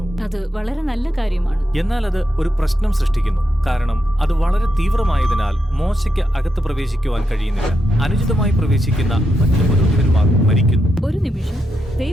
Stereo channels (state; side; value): normal; both; correlation 0.83